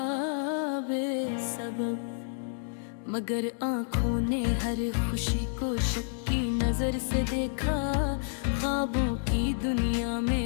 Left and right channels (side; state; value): right; silent; digital silence